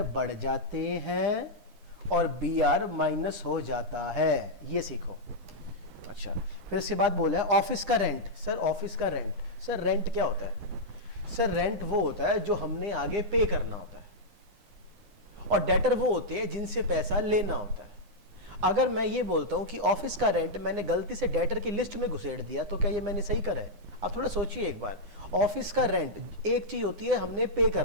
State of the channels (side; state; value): left; late; 9.8 ms